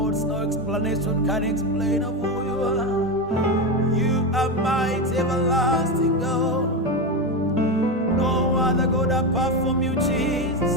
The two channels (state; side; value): normal; both; correlation 0.14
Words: no explanation can explain of who you are. You are mighty, everlasting God. No other God apart from you,